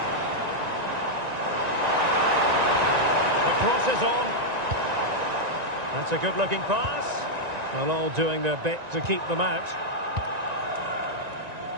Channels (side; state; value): left; late; 1.9 ms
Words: The cross is on. That's a good-looking pass. Well, all doing their bit to keep them out.